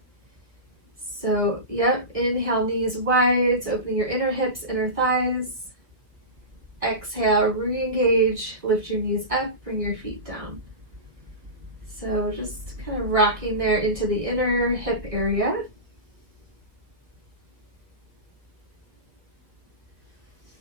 So, yep, inhale, knees wide, so opening your inner hips, inner thighs. Exhale, re-engage, lift your knees up, bring your feet down. So just kind of rocking there into the inner hip area.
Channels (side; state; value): left; late; 1.3 ms